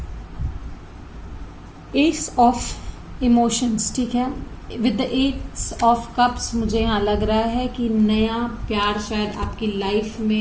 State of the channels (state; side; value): identical; both; correlation 1.00